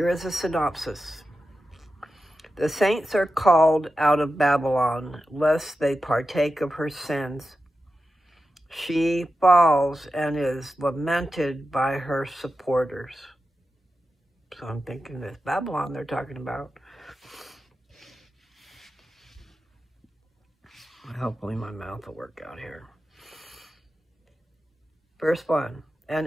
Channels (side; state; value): both; normal; correlation 0.91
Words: is a synopsis. The saints are called out of Babylon, lest they partake of her sins. She falls and is lamented by her supporters. So I'm thinking this Babylon they're talking about. Hopefully my mouth will work out here. Verse 1.